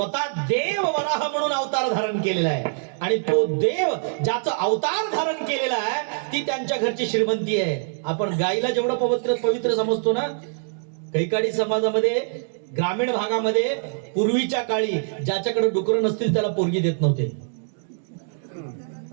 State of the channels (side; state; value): left; silent; 63 dB below the other